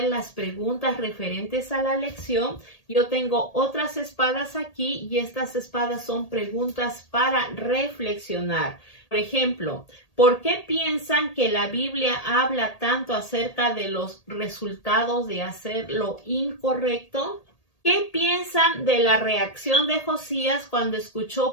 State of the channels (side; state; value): right; late; 1.8 ms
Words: las preguntas referentes a la lección, yo tengo otras espadas aquí y estas espadas son preguntas para reflexionar. Por ejemplo, ¿por qué piensan que la Biblia habla tanto acerca de los resultados de hacer lo incorrecto? ¿Qué piensan de la reacción de Josías cuando